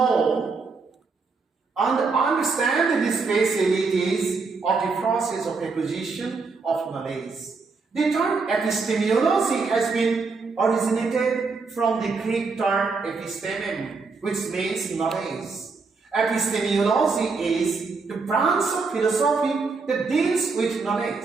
and understand the specialities of the process of acquisition of knowledge. The term epistemology has been originated from the Greek term epistemem, which means knowledge. Epistemology is the branch of philosophy that deals with knowledge.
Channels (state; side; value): quieter; left; 4.4 dB